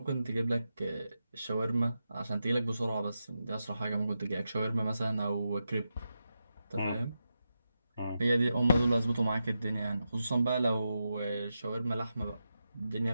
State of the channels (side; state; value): both; inverted; correlation -0.88